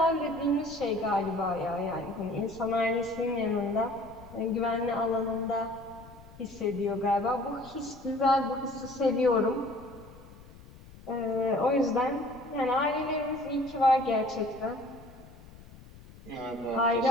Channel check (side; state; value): left; noise; rumble, 20 dB below the sound